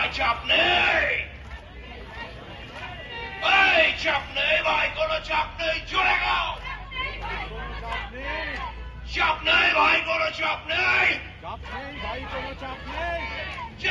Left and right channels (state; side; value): identical; both; correlation 1.00